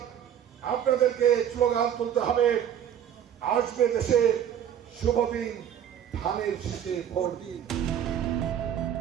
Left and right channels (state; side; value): quieter; left; 9.6 dB